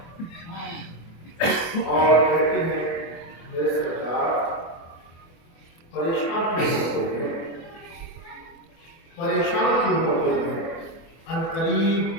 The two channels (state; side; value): late; right; 24 ms